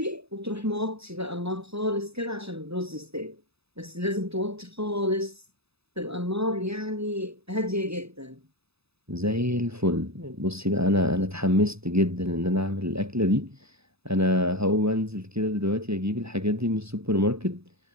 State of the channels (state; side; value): late; left; 0.79 ms